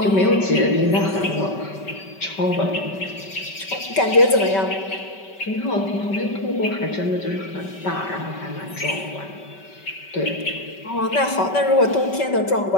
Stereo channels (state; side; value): late; right; 5.2 ms